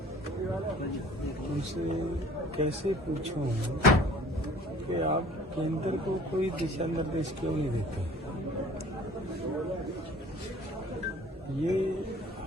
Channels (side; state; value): both; normal; correlation 0.50